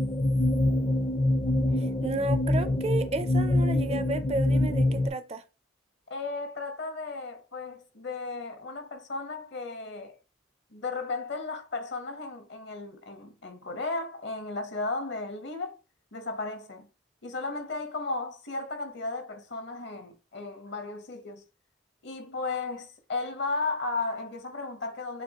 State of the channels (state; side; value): normal; both; correlation 0.51